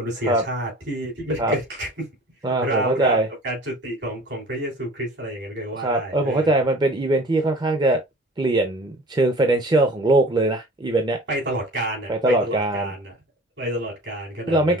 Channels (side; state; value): both; normal; correlation 0.44